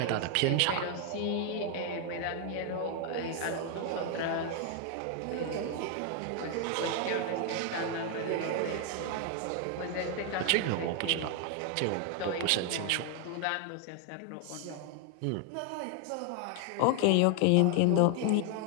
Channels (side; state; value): both; different; correlation 0.00